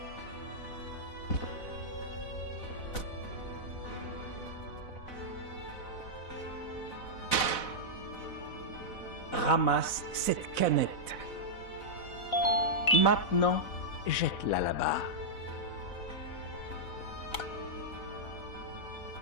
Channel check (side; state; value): right; late; 4.0 ms